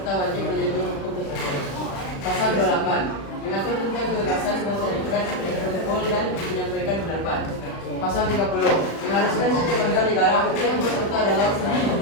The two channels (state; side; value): late; right; 36 ms